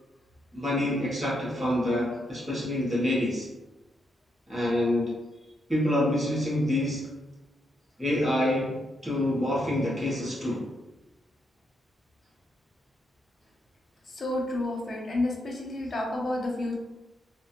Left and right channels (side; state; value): both; normal; correlation 0.79